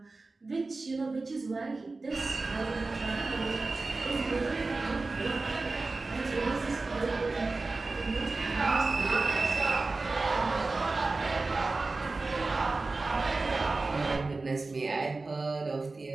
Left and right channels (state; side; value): quieter; left; 3.5 dB